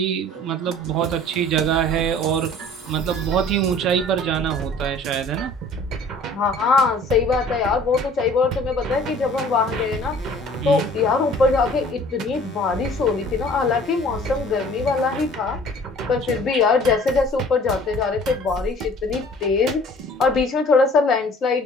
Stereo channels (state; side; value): normal; both; correlation 0.50